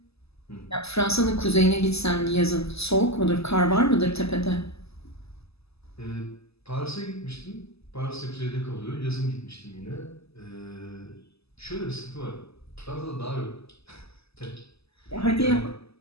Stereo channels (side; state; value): right; late; 0.79 ms